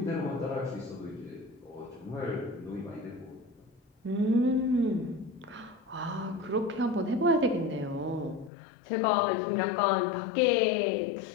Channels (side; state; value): right; drops out; at 8.5 s